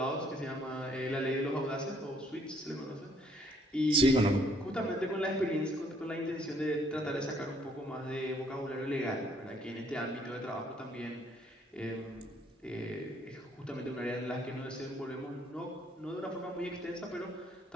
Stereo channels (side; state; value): both; normal; correlation 0.66